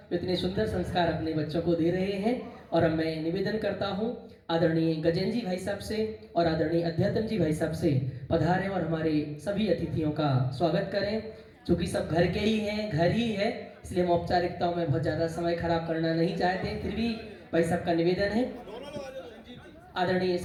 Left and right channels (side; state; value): both; identical; correlation 1.00